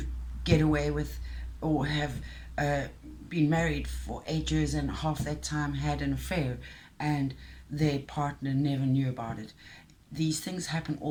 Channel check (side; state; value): both; identical; correlation 1.00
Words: get away with, or have uh, been married for 8 years and half that time had an affair, and their partner never knew about it. These things happen